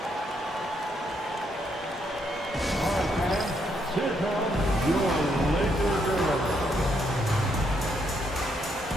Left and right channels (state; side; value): normal; both; correlation 0.75